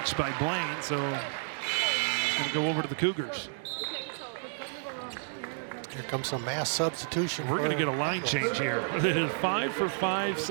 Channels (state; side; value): silent; left; 57 dB below the other